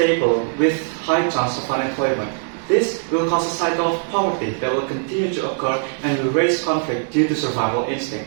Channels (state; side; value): silent; left; 65 dB below the other